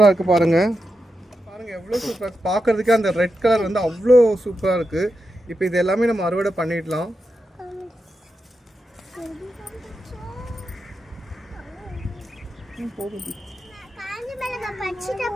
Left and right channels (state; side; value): normal; both; correlation 0.88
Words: இருக்குது பாருங்கள். பாருங்கள் எவ்வளோ சூப்பராக இருக்குது பார்க்குறதுக்கே. அந்த ரெட் கலர் வந்து அவ்வளோ சூப்பராக இருக்குது. இப்போ இது எல்லாமே நம்ம அறுவடை பண்ணிடலாம்.